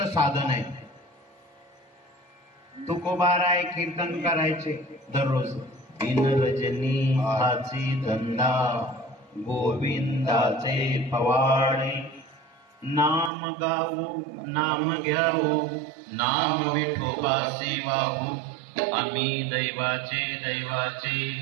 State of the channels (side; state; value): left; drops out; at 13.3 s